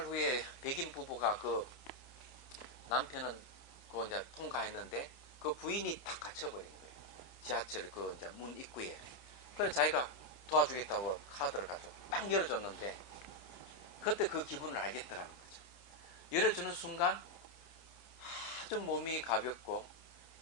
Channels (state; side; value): late; right; 30 ms